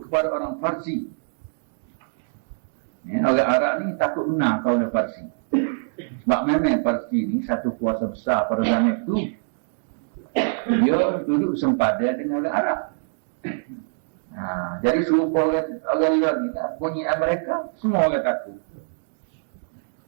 kepada orang Parsi. Orang Arab ni takut benar kau orang Parsi. Sebab memang Parsi ni satu kuasa besar pada zaman itu. Dia duduk sempadan dengan orang Arab. Jadi serupa orang luar ni tak punya mereka, semua orang takut.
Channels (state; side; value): silent; left; digital silence